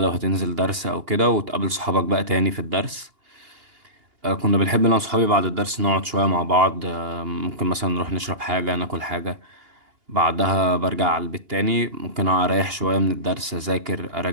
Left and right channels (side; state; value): left; late; 2.8 ms